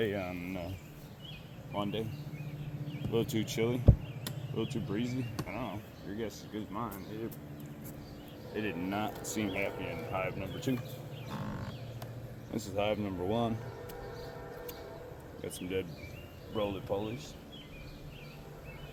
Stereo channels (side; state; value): both; identical; correlation 1.00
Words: on Monday. A little too chilly, a little too breezy. I don't know. Your guess is as good as mine. It did not seem happy in hive number 2. This is hive number 1. Got some dead roly-polies.